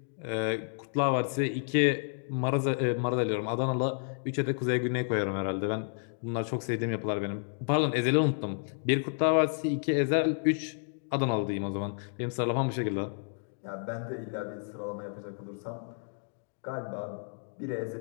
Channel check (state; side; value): silent; right; digital silence